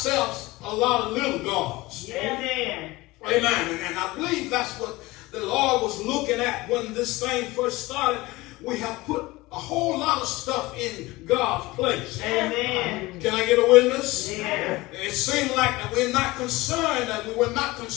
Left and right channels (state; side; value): quieter; right; 20.5 dB